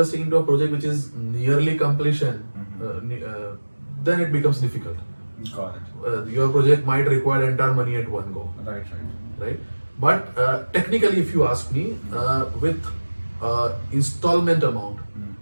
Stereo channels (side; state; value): both; inverted; correlation -1.00